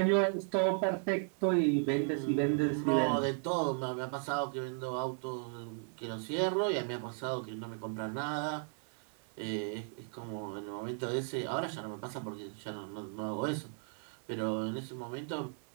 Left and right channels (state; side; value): silent; left; 54 dB below the other